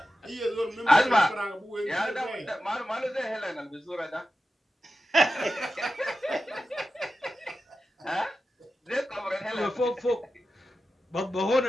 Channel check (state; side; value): normal; both; correlation 0.93